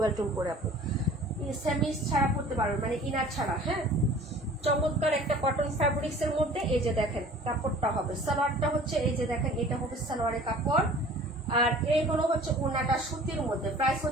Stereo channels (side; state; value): both; normal; correlation 0.47